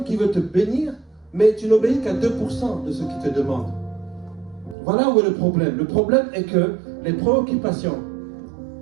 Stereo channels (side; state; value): left; drops out; at 4.8 s